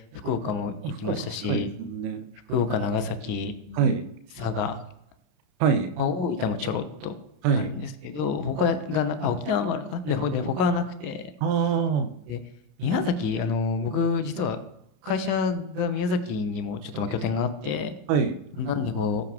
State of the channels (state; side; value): late; left; 33 ms